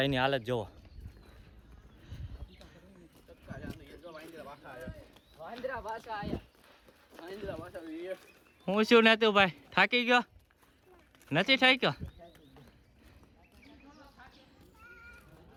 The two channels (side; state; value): both; identical; correlation 1.00